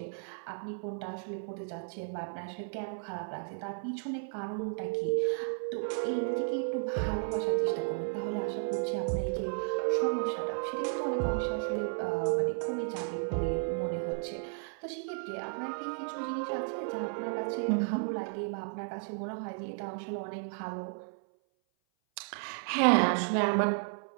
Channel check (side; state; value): left; silent; 55 dB below the other